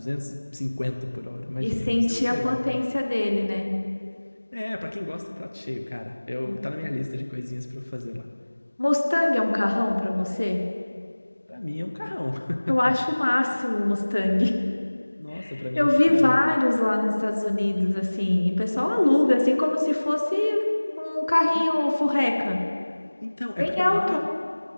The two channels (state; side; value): inverted; both; correlation -1.00